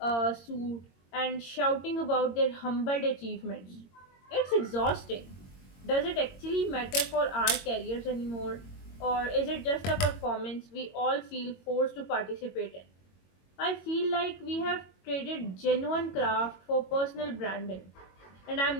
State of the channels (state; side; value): late; right; 22 ms